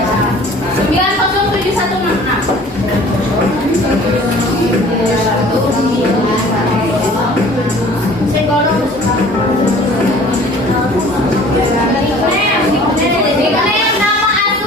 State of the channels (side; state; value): both; normal; correlation 0.49